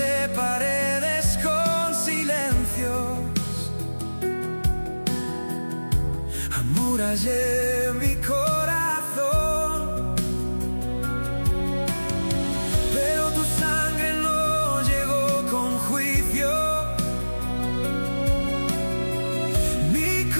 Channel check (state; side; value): inverted; both; correlation -1.00